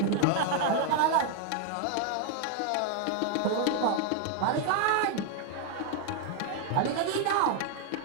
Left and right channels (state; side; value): different; both; correlation 0.00